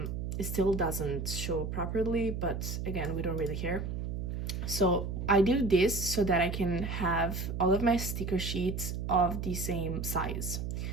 It still doesn't show properly, but again, we don't really care. So I do this so that I can have all of my sticker sheets of the same size.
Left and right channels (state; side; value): noise; right; hum, 4 dB below the sound